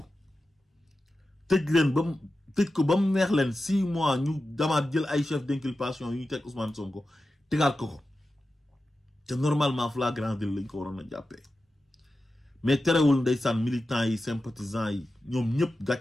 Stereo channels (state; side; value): normal; both; correlation 0.92